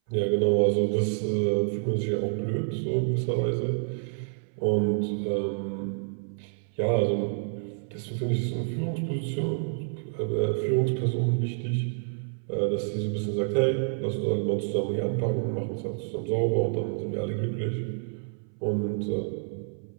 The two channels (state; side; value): silent; left; 59 dB below the other